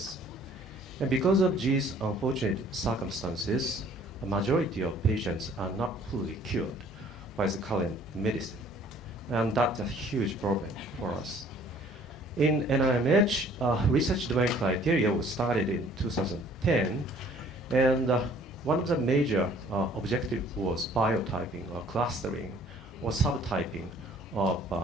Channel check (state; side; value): normal; both; correlation 0.56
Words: And because of these unfortunate circumstances, a majority of patients are not fully cured by the current medicine. And that's a huge problem for us. In NIMH, research-driven criteria was started in 2010, and one of the major objectives was biotyping or clustering or subtyping of